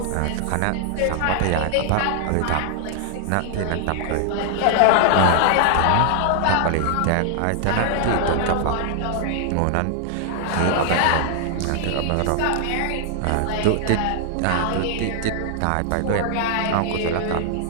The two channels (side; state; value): both; different; correlation 0.00